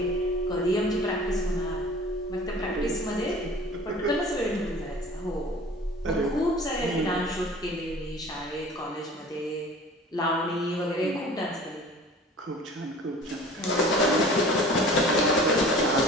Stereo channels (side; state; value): both; normal; correlation 0.45